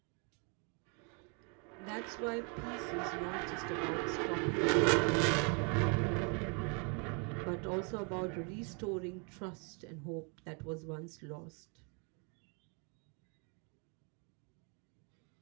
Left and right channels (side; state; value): left; quieter; 35.6 dB